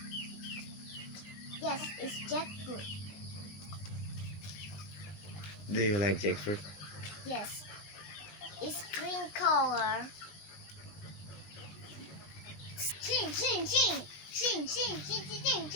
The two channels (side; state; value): right; late; 20 ms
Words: Yes, it's jackfruit. Do you like jackfruit? Yes. It's green color. Ching, ching, ching. Ching, ching, ching, ching,